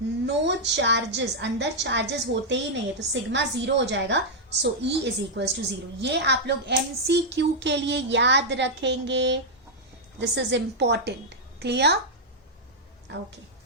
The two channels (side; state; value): both; normal; correlation -0.05